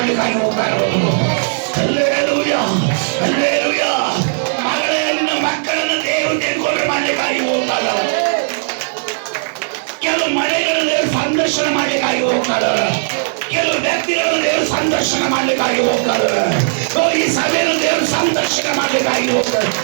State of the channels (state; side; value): silent; left; digital silence